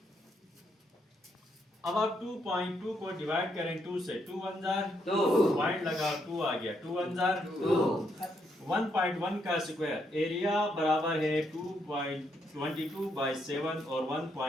अब आप 2.2 को डिवाइड करें 2 से, 2 1 जार 2 पॉइंट लगा 2 आ गया, 2 1 जार 2 1.1 का स्क्वायर। एरिया बराबर है 2.22 बाय 7 और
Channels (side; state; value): both; normal; correlation 0.76